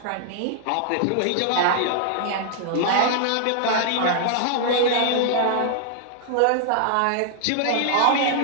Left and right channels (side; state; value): both; different; correlation 0.00